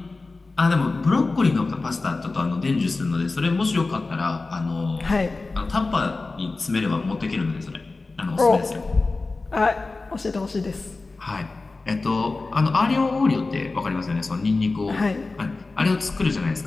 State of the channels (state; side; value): quieter; right; 3.6 dB